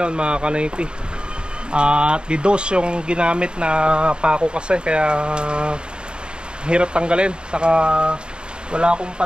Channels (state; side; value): late; left; 0.051 ms